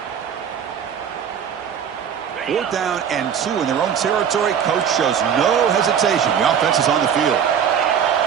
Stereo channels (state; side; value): quieter; left; 8.0 dB